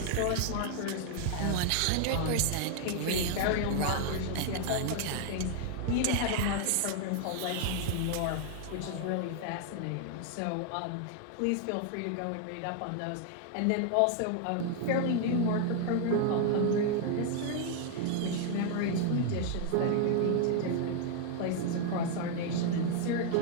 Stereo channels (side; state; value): both; different; correlation 0.00